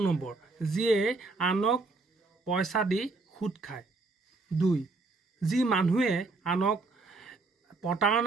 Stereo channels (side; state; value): left; quieter; 3.6 dB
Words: নম্বৰ, যিয়ে আনক পইচা দি সুদ খায়। 2, যি মানুহে আনক